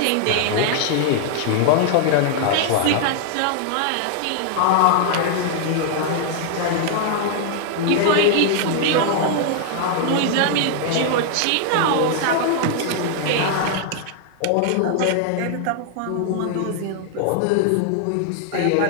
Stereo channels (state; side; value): different; both; correlation 0.00